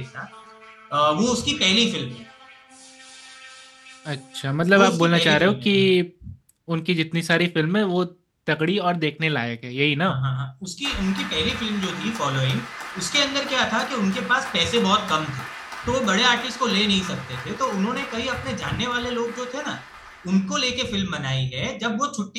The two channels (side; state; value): both; identical; correlation 1.00